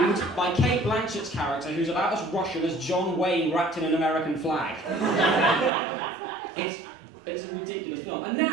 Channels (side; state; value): left; drops out; at 5.7 s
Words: by Kate Blanchett's character, who's about as Russian as John Wayne wrapped in an American flag. It's a ridiculous film. And